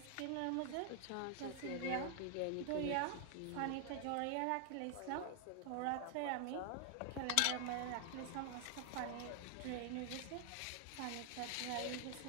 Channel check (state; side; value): different; both; correlation 0.00